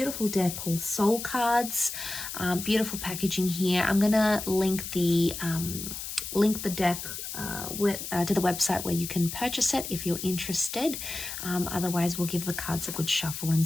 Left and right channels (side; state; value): left; noise; hiss, 7 dB below the sound